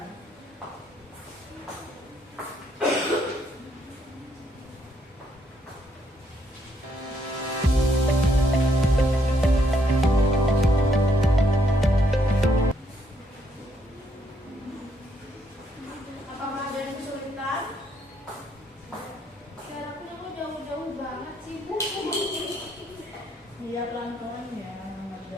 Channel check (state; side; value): normal; both; correlation 0.72